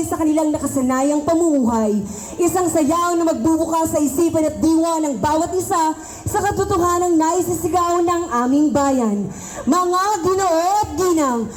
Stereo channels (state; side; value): identical; both; correlation 1.00